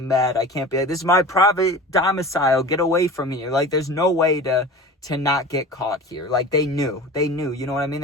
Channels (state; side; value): normal; both; correlation 0.36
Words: Bad. I can't be like, this is my private domicile. Get away from here. Like, there's no way to not get caught here. Like, they knew, you know what I mean?